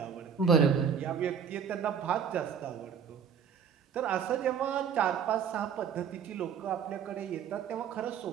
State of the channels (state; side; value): quieter; left; 7.4 dB